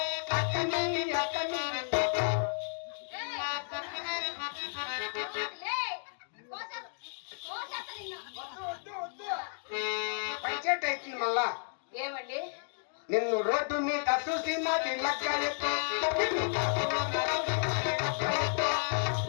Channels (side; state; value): right; silent; digital silence